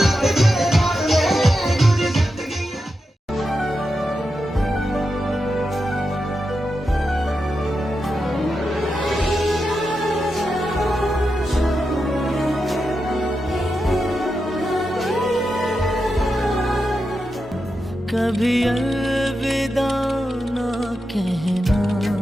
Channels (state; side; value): normal; both; correlation 0.88